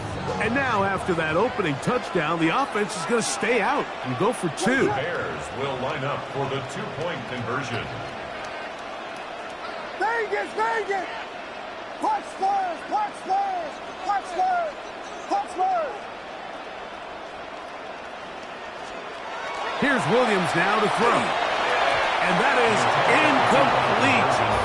And now, after that opening touchdown, the offense is going to stay out and go for two. Bears will line up for the two-point conversion. Vegas, Vegas! Clutch Spurs, clutch Spurs, clutch Spurs, clutch Spurs! Here's Williams now to throw. And that is incomplete.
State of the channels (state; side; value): identical; both; correlation 1.00